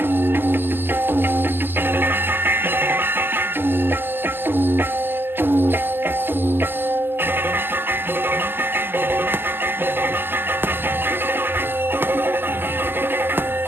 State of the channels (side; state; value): left; late; 0.10 ms